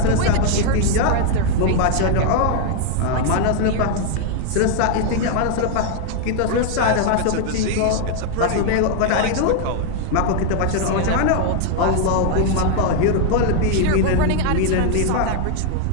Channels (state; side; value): different; both; correlation 0.00